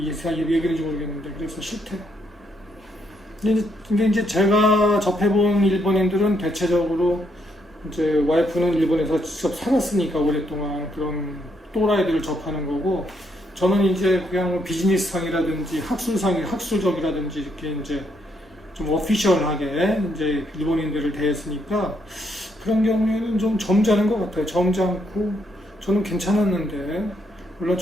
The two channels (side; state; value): both; normal; correlation 0.75